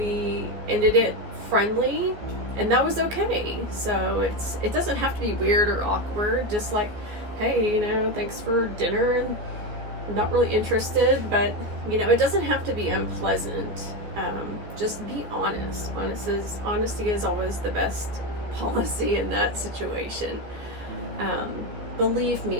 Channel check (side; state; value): left; late; 14 ms